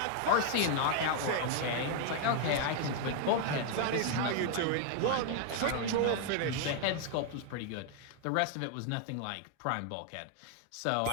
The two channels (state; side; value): different; both; correlation 0.00